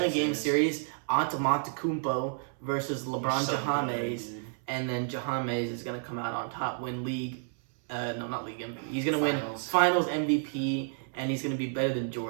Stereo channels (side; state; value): left; silent; 58 dB below the other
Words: 76ers. series. Antetokounmpo versus LeBron So James, good, dude. and then James is gonna come out on top, win league. No, not league MVP. He's gonna win Finals. Finals MVP, and he's gonna be better than